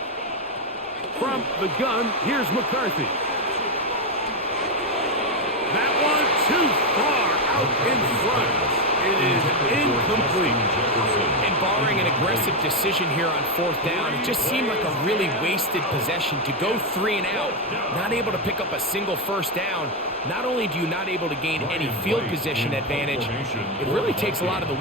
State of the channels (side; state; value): both; normal; correlation 0.07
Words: From the gun, here's McCarthy. That one too far out in front. It is incomplete. And barring an aggressive decision here on fourth down, it just seemed like a really wasted possession to go 3 and out, not able to pick up a single first down. Not only do you not able to gain any field position advantage, it really takes a lot of the